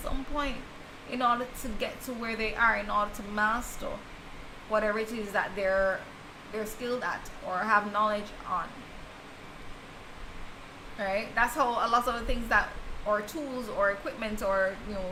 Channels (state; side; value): identical; both; correlation 1.00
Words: some point in order to get to where they are, in order to master whatever it is that they're skilled at or have knowledge on. Right? That's how a lot of the things that, or tools or equipment, or, you know,